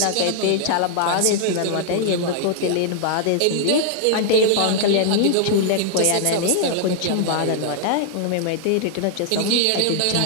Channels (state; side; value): different; both; correlation 0.00